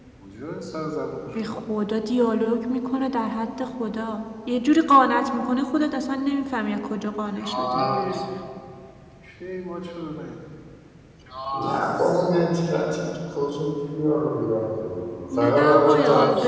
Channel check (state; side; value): identical; both; correlation 1.00